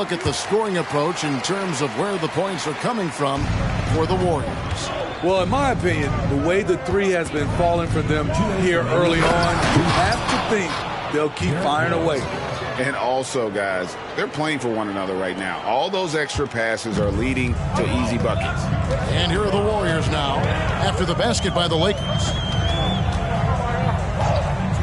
at the scoring approach in terms of where the points are coming from for the Warriors. Well, in my opinion, the way the 3 has been falling for them here early on, you have to think they'll keep firing away. And also, guys, they're playing for one another right now. All those extra passes are leading to easy buckets. And here are the Warriors now after the basket by the Lakers.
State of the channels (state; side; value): identical; both; correlation 1.00